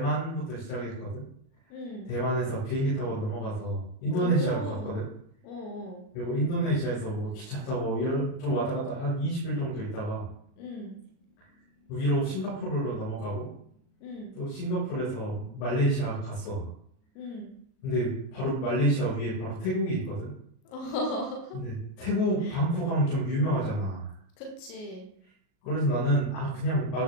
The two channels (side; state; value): right; late; 38 ms